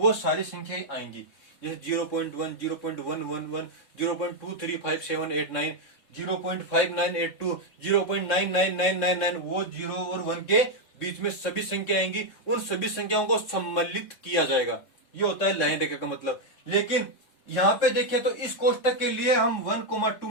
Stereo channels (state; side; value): late; right; 3.6 ms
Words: सारी संख्याएं आएंगी। जैसे 0.1, 0.111, 0.23578 0.5982, 0.99999, वो 0 और 1 के बीच में सभी संख्या आएंगी। उन सभी संख्याओं को सम्मिलित किया जाएगा, ये होता है लाइन रेखा का मतलब। लेकिन यहाँ पे देखिए तो इस कोष्टक के लिए हम 1,2